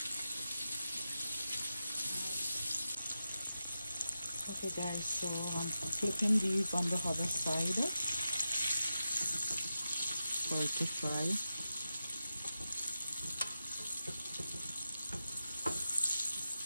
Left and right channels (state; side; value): inverted; both; correlation -0.91